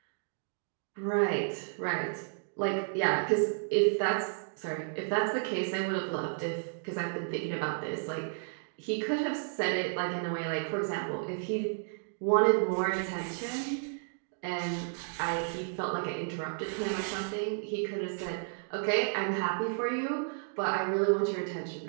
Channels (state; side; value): silent; left; digital silence